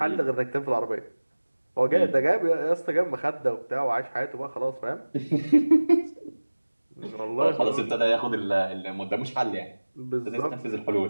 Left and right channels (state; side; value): inverted; both; correlation -1.00